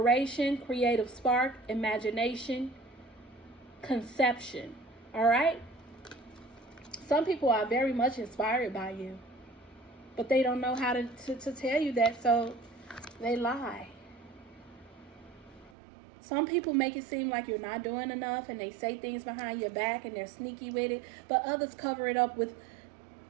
creative spark, imagination, conception. All right? Some people are very much inspired by you, but they don't know how to tell you that, so they lie. Some people make it seem like you're not doing enough, and they say things behind your back, and they're sneaky with it, but others cover it up with,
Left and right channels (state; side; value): drops out; left; at 15.7 s